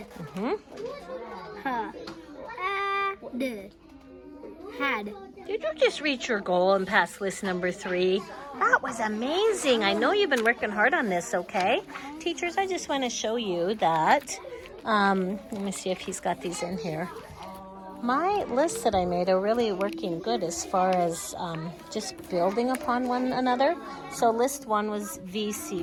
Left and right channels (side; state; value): both; identical; correlation 1.00